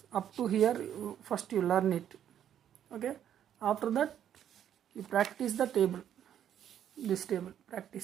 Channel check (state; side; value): quieter; left; 10.0 dB